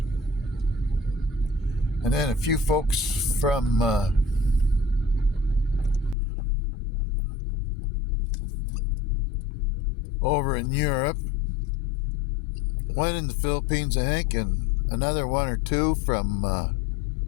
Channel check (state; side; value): drops out; right; at 6.2 s